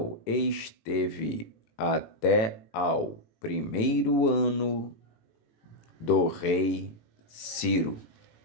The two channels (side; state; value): right; late; 18 ms